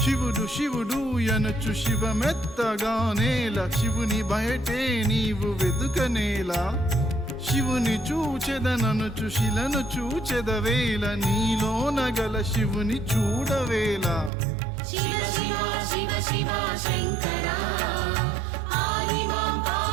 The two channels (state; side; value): drops out; left; at 14.3 s